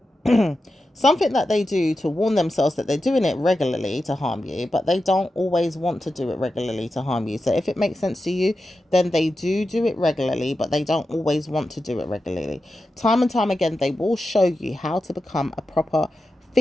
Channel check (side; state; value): both; normal; correlation 0.91